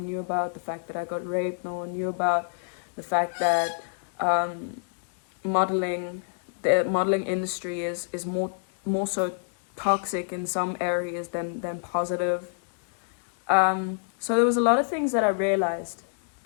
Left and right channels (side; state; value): right; silent; digital silence